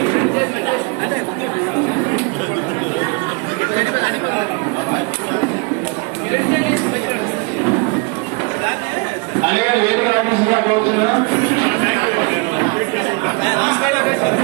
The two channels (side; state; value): left; quieter; 29.2 dB